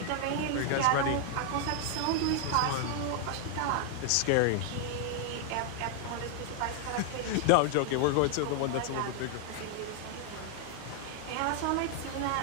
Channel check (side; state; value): both; different; correlation 0.00